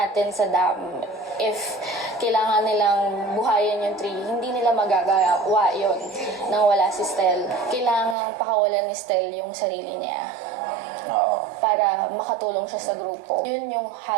sa dam, if kailangan nilang buhayin yung tree, hindi nila magagawa yun nang wala si Stel. Kailangan pakawalan ni Stel yung sarili niya Oo. para makatulong siya sa grupo. Yun yung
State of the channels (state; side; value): drops out; left; at 8.2 s